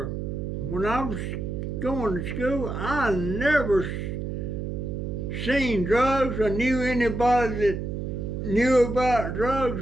when I was going to school, I never seen drugs or knew anybody that knew about drugs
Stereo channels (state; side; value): noise; right; hum, 4 dB below the sound